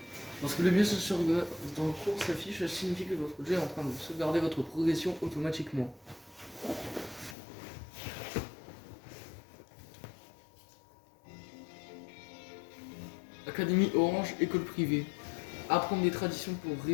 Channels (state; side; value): drops out; right; at 7.4 s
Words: Lorsque le mieux se regarde dans le cours s'affiche, ça signifie que votre jeu est en train de sauvegarder votre progression automatiquement. Académie Orange, école privée. Apprendre des traditions pour